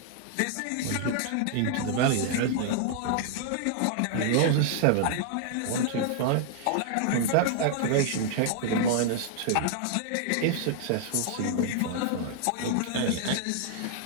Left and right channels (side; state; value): both; different; correlation -0.01